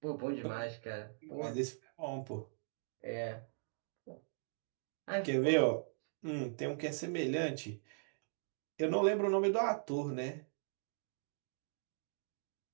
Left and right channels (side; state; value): left; silent; digital silence